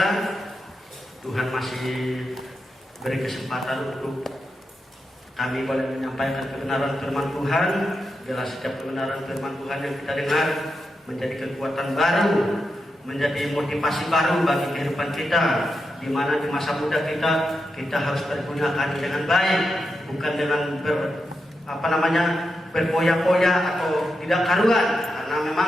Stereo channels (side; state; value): both; normal; correlation 0.87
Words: Tuhan masih beri kesempatan untuk kami boleh menyampaikan kebenaran firman Tuhan. Bila setiap kebenaran firman Tuhan yang kita dengar menjadi kekuatan baru, menjadi motivasi baru bagi kehidupan kita, di mana di masa muda kita harus pergunakan dengan baik, bukan dengan berpoya-poya atau tidak karuan. Karena